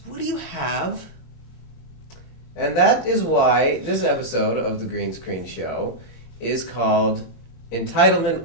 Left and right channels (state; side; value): late; right; 22 ms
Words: what do you have? And that is why this episode of the Green Screen Show is called Entitlement